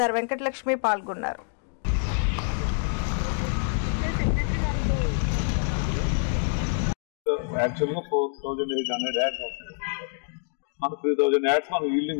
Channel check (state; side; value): silent; right; 61 dB below the other